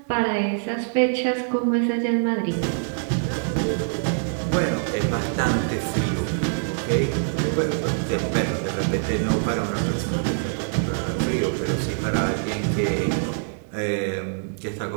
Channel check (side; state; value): left; silent; digital silence